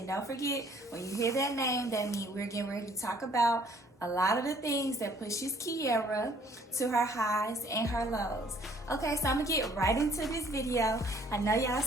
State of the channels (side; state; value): both; normal; correlation 0.59